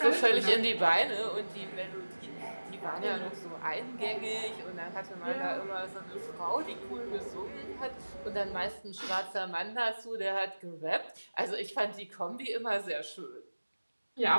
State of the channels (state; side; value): inverted; both; correlation -1.00